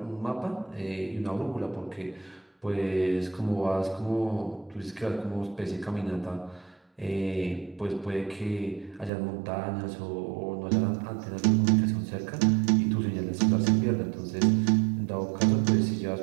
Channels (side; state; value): left; drops out; at 9.1 s